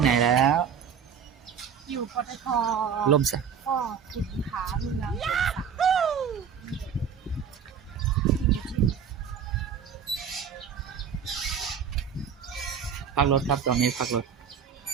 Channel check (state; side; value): quieter; left; 7.2 dB